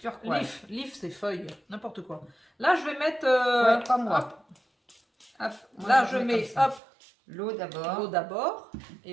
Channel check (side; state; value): left; drops out; at 6.8 s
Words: Leaf c'est feuille, n'importe quoi. Là, je vais mettre... Ouais, pas moi. Hop, Hop, moi, là, je mets mets comme ça. hop, L'eau d'abord. l'eau d'abord.